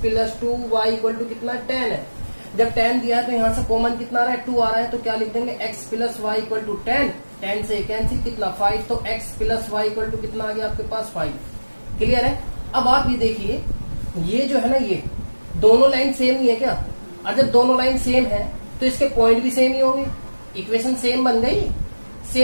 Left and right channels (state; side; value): inverted; both; correlation -1.00